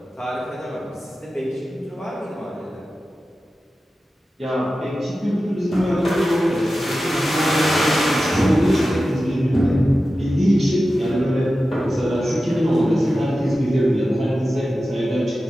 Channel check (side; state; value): both; normal; correlation 0.93